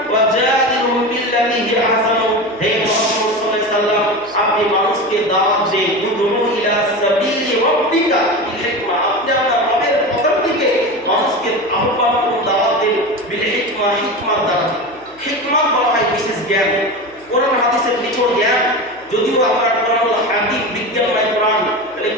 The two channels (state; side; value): noise; left; hum, 28 dB below the sound